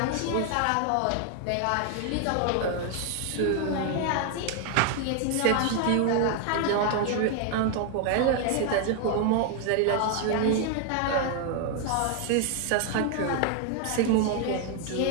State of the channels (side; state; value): both; different; correlation 0.01